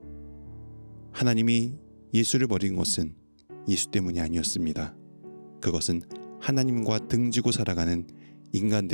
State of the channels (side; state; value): both; inverted; correlation -1.00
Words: 하나님이 예수를 버린 것은 예수 때문이 아니었습니다. 그것은 하나님과 등지고 살아가는